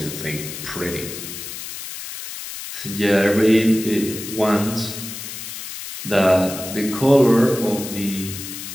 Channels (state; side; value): noise; left; hiss, 9 dB below the sound